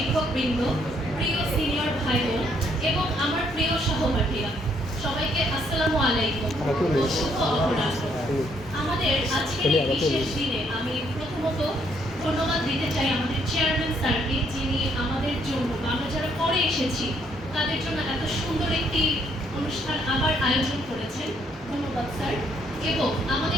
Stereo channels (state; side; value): normal; both; correlation 0.70